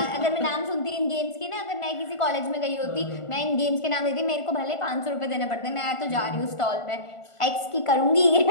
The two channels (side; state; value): right; late; 1.5 ms